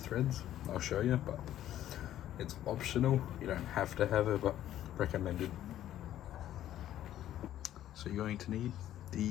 I'll show you, but it's optional. You don't have to have it, but recommended. So you're going to need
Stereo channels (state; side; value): quieter; right; 12.3 dB